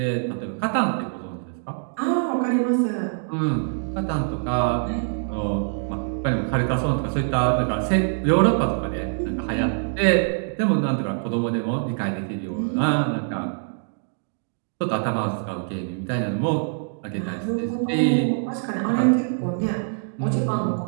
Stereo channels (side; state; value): left; silent; digital silence